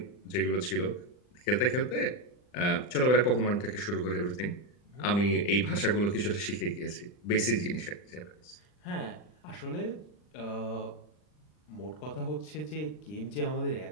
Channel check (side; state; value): right; late; 40 ms